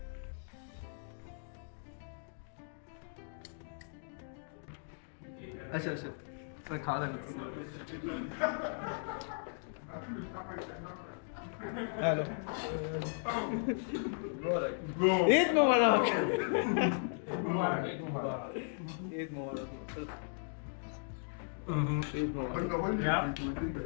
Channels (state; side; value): silent; right; digital silence